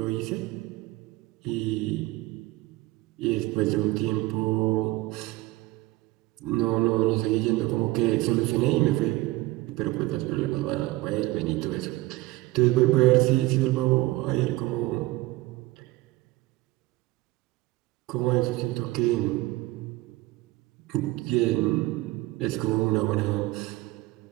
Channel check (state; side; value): quieter; left; 19.2 dB